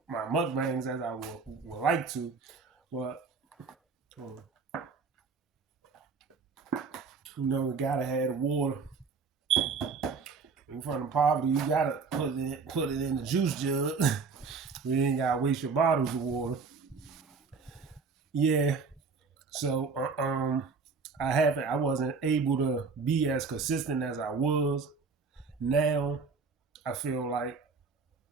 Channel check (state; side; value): quieter; left; 4.9 dB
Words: my mukbangs as I would like to, but um, we gotta have the water. In front of poverty, you gotta put it in the juice jug. You ain't gotta waste your bottles of water. Yeah. So I wasn't able to be as consistent as I was. Now I feel like